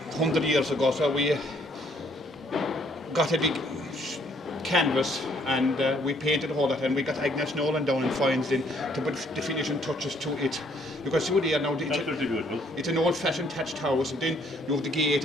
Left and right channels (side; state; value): both; normal; correlation 0.66